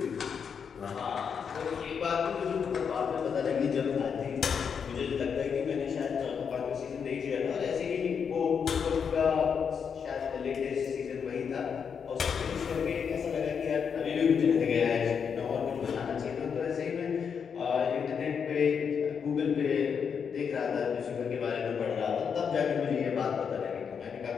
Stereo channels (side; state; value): right; quieter; 6.7 dB